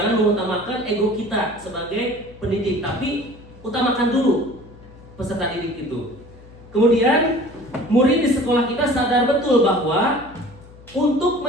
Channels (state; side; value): noise; left; hum, 21 dB below the sound